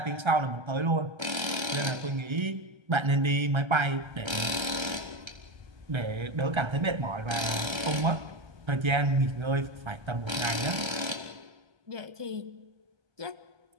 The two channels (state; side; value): late; left; 1.3 ms